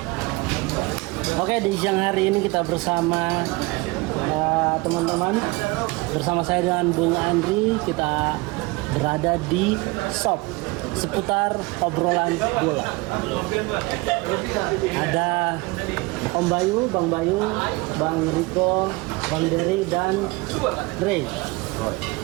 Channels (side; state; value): left; quieter; 24.3 dB